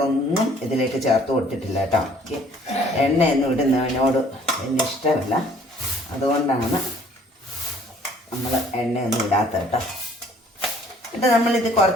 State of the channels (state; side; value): normal; both; correlation 0.57